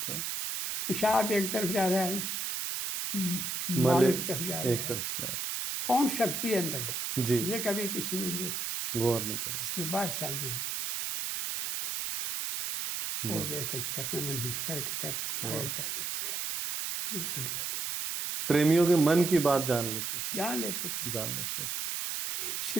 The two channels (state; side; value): noise; right; hiss, 2 dB below the sound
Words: है, पेशाब एक तरफ जा रहा है, मल माल एक तरफ जा रहा एक है, तरफ जा रहा कौन शक्ति अंदर है, है। जी, ये कभी किसी ने देखा, गौर नहीं करे। सिर्फ बात साहब है वो देख चरण में नमस्कार करता है, हमारे दौलत है, निकल गया। प्रेमियों के मन की बात जान लेते थे, जान लेते थे। जान लेते थे।